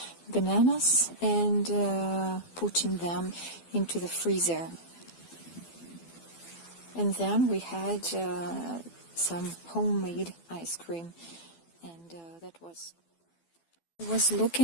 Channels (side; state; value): right; late; 12 ms